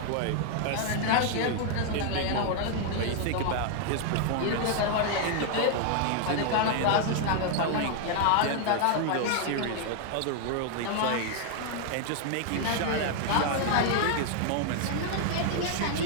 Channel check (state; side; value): different; both; correlation 0.00